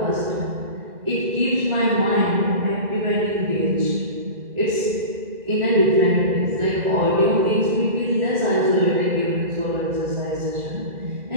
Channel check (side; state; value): left; late; 2.0 ms